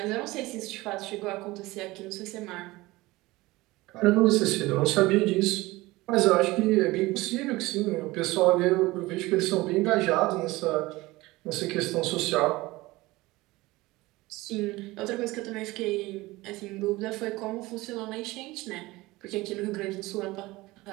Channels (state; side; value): quieter; left; 20.1 dB